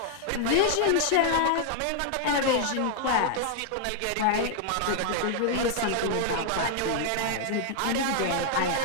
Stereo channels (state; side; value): different; both; correlation -0.01